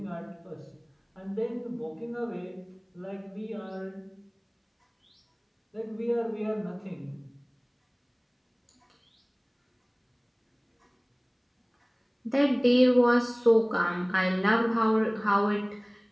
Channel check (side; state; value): both; identical; correlation 1.00